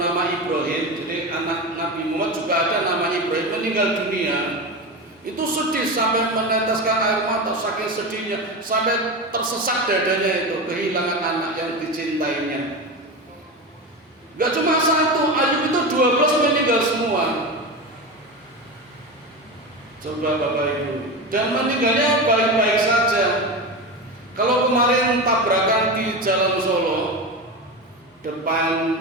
Ibrahim, jadi anak Nabi Muhammad juga ada namanya Ibrahim, meninggal dunia. Itu sedih sampai meneteskan air mata, saking sedihnya, sampai tersesak dadanya itu kehilangan anak yang dicintainya. Gak cuma satu, Ayub itu 12 meninggal semua. Coba Bapak Ibu, dan meninggalnya baik-baik saja. Kalau kemarin tabrakan di Jalan Solo depan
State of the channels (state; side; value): normal; both; correlation 0.22